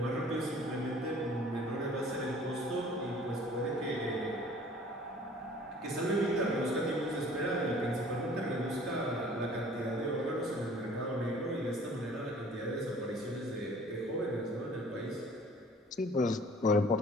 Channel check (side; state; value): both; normal; correlation 0.51